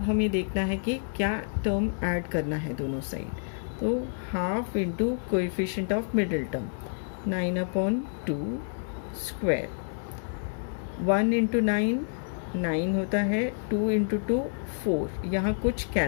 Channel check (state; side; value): silent; right; digital silence